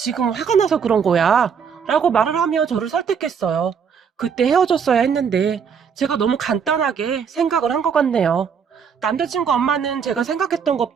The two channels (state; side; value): quieter; left; 6.8 dB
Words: 화가 나서 그런 거야. 라고 말을 하며 저를 설득했어요. 그때 헤어졌어야 했는데 제가 너무 간단하게 생각을 한 것 같네요. 남자친구 엄마는 제가 생각했던